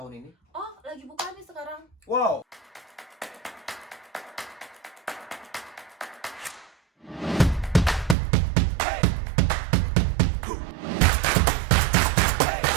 ini? Oh, lagi buka nih sekarang. Wow.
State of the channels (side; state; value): left; drops out; at 8.2 s